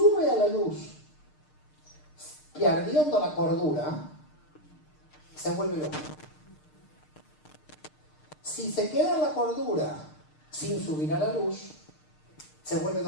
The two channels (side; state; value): right; late; 6.6 ms